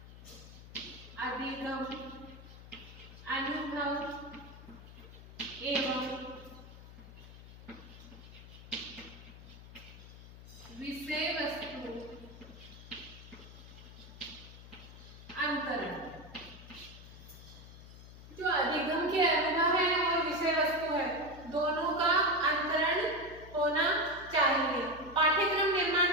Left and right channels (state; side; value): noise; left; hum, 16 dB below the sound